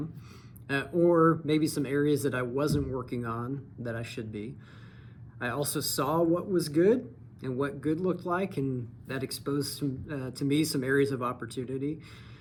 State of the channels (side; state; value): both; identical; correlation 1.00